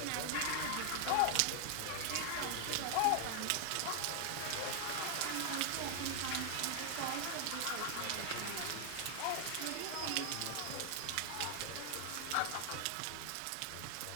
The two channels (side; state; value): both; different; correlation 0.00